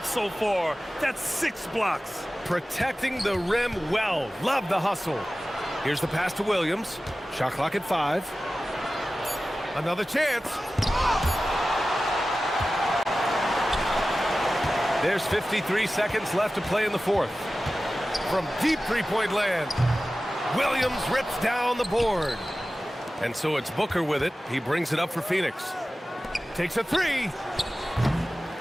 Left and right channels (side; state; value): both; normal; correlation 0.95